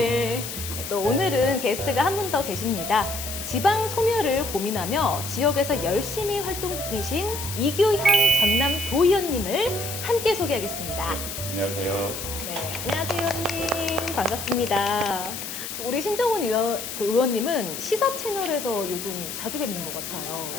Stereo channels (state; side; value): noise; left; hiss, 7 dB below the sound